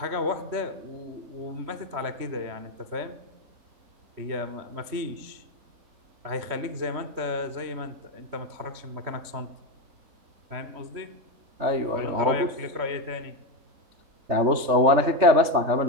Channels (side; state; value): left; late; 3.4 ms